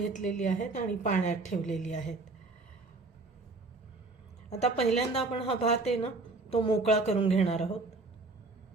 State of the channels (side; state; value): left; quieter; 3.5 dB